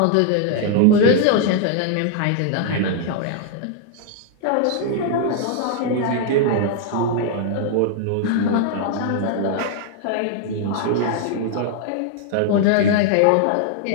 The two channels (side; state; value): both; different; correlation 0.00